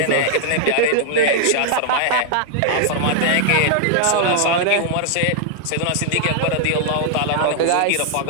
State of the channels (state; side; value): different; both; correlation 0.00